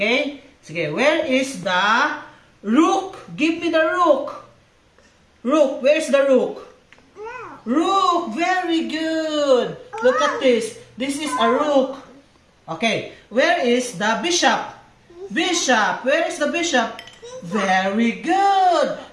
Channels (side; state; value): both; identical; correlation 1.00